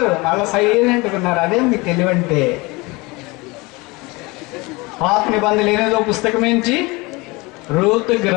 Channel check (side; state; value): right; quieter; 24.5 dB